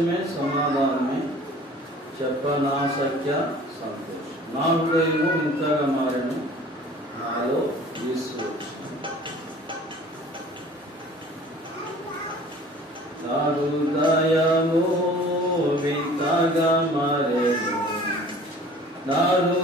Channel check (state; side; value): normal; both; correlation 0.48